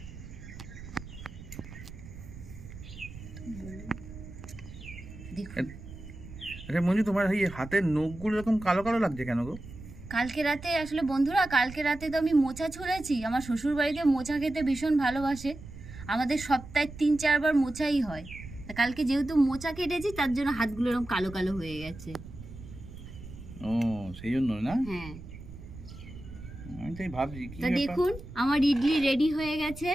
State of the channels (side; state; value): right; noise; rumble, 14 dB below the sound